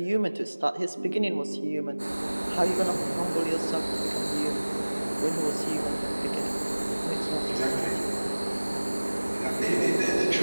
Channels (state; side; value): inverted; both; correlation -1.00